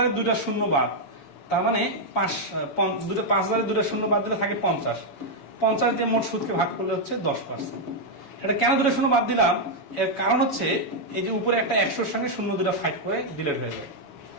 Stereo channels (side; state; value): right; late; 7.1 ms